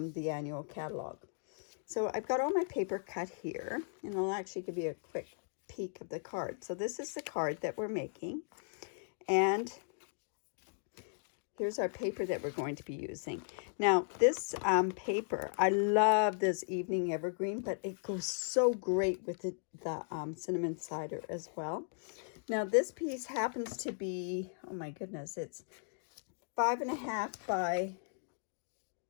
the annual catalog. So I've got all my paper cut here, and I'll actually give you a quick peek of the card. So this is the card that we're making, and here's our paper that we're going to be using. Now this paper, I love this Evening Evergreen, but it goes so great with the cinnamon cider as well. Now this piece happens to be, oh my goodness, it's 5.5 by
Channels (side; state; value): right; silent; digital silence